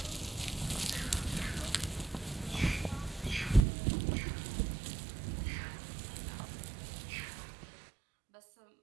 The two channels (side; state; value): left; drops out; at 3.7 s